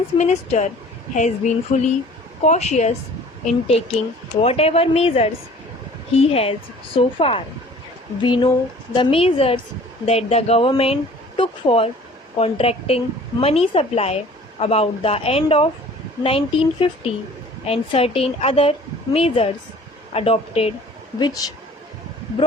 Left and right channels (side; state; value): both; normal; correlation 0.49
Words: minister has been fully cautious in taking whatever measures he has so far. We know the measures that the government took for contracting money supply about the end of 1950 and certain other measures adopted which